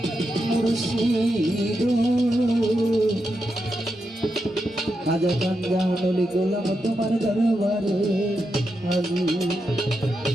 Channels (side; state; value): both; normal; correlation 0.86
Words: মুর্শিদ খাজা কান্দা নলি গোলাম তোমার দরবারে